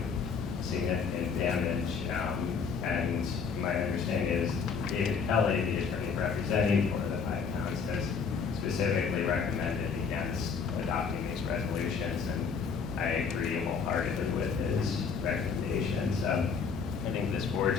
significant damage. And my understanding is David Kelly, the attorney representing 4 of the 5 towns, has specifically recommended against adopting these resolutions, and I agree wholeheartedly with his recommendations. I think this board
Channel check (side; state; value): right; quieter; 5.7 dB